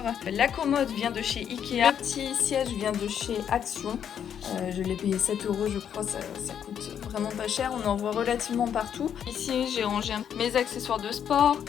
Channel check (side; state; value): right; quieter; 8.7 dB